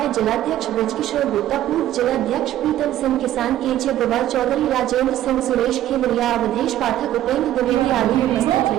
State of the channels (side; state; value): left; quieter; 13.0 dB